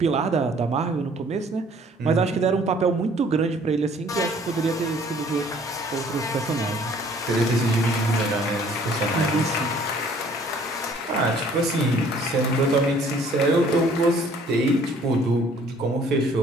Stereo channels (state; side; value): normal; both; correlation 0.57